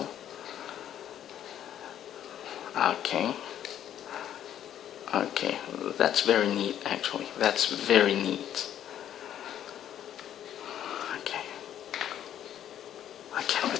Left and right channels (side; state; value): right; quieter; 10.6 dB